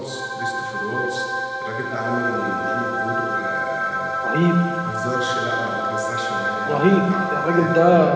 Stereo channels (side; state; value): both; identical; correlation 1.00